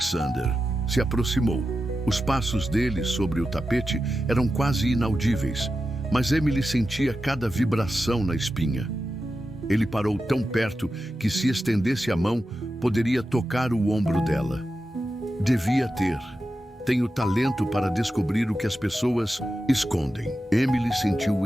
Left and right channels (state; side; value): normal; both; correlation 0.91